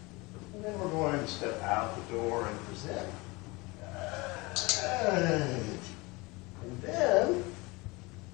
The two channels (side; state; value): right; quieter; 24.5 dB